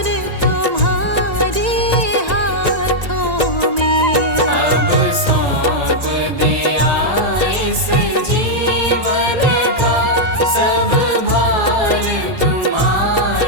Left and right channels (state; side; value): late; left; 1.9 ms